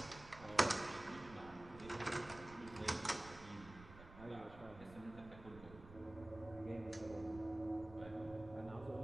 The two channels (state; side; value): noise; right; rumble, 16 dB below the sound